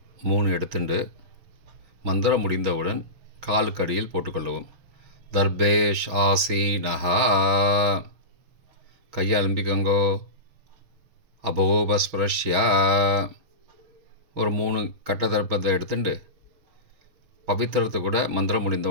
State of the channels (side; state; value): left; late; 6.1 ms